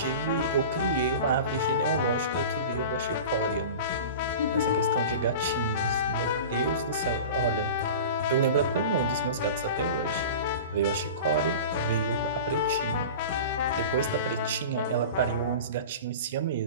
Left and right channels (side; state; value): both; inverted; correlation -0.34